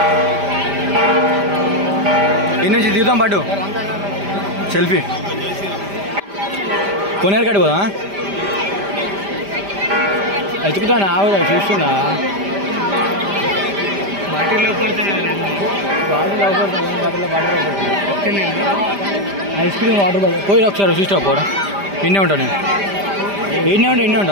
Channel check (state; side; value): late; left; 5.0 ms